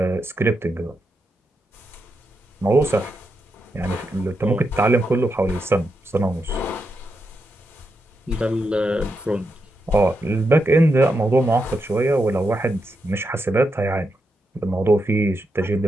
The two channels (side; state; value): both; normal; correlation 0.85